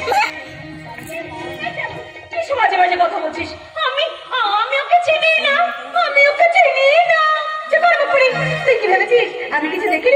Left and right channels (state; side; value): identical; both; correlation 1.00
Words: মাঝে মাঝে কথা বলছিস। আমি আমি ওকে চিনি না, আমি ওকে চিনি না। তুই কি ভেবেছিস আমি কিছু